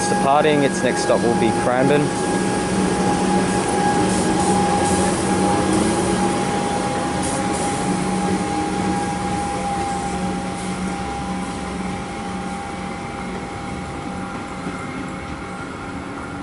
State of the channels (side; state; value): both; identical; correlation 1.00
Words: departing, its next stop will be Cranbourne.